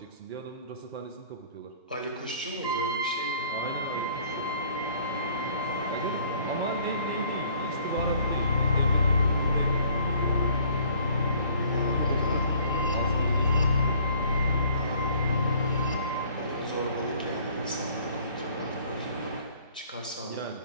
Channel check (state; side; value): inverted; both; correlation -0.57